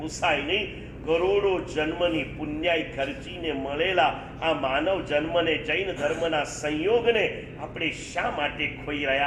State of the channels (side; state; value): both; identical; correlation 1.00